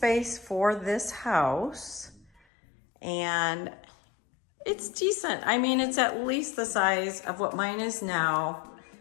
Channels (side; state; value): right; drops out; at 2.4 s